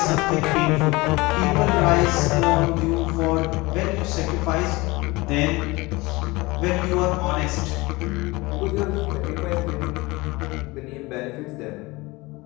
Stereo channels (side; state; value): right; quieter; 22.8 dB